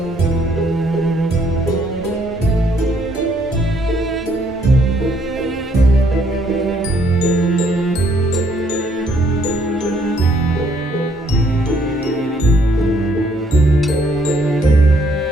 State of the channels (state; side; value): normal; both; correlation 0.68